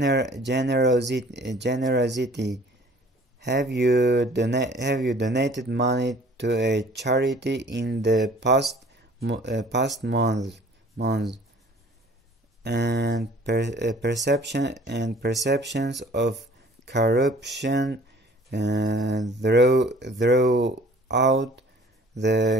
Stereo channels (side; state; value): both; normal; correlation 0.51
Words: Have you donated money to a charity in the past month? And perceptions of corruption throughout